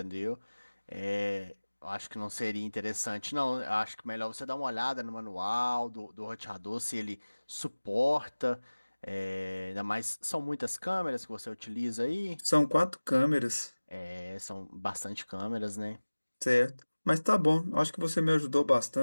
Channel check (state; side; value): inverted; both; correlation -1.00